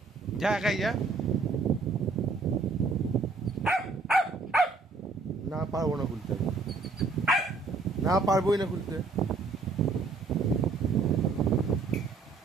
যা, একাই যা। না পারবো না খুলতে, না পারবোই না খুলতে।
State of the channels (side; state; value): left; quieter; 4.0 dB